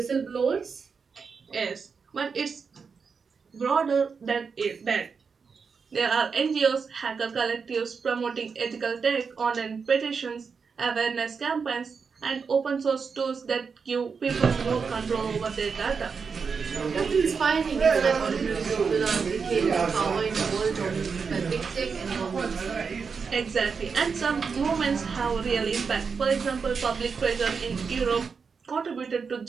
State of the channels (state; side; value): quieter; left; 5.5 dB